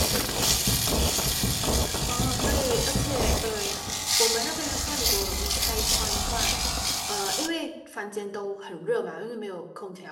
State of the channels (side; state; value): both; identical; correlation 1.00